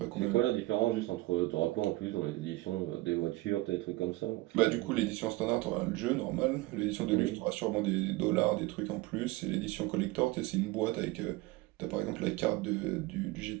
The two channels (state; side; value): quieter; left; 20.2 dB